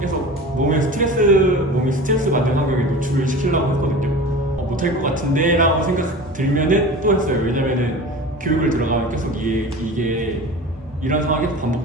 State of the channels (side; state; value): both; normal; correlation 0.35